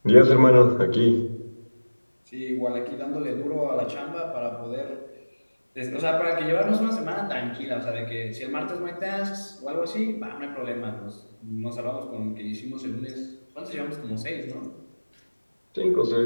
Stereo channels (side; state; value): both; inverted; correlation -1.00